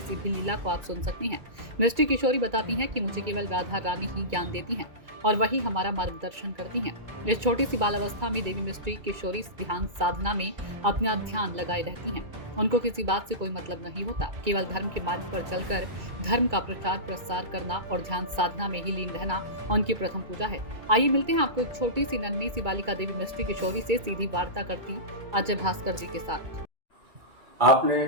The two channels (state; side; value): late; left; 2.3 ms